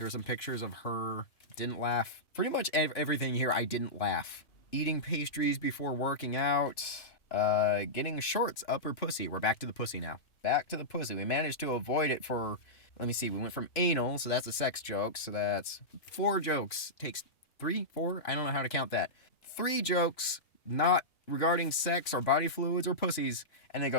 were some pictures of her. Didn't laugh. Pretty much everything here I didn't laugh. Eating pastries before working out. Getting shorts up her pussy. We're back to the pussy now. Back to the pussy. We managed to avoid it for... Let me see, we went from anal, so that's a sex joke, so that's 4 jokes. Takes 3, 4? I don't know how to count that. 3 jokes, not regarding sex or body fluids or pussies, and then it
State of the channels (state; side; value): late; right; 3.0 ms